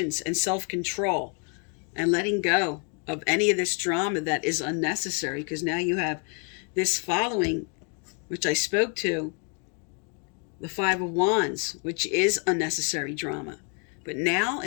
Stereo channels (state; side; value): quieter; right; 38.9 dB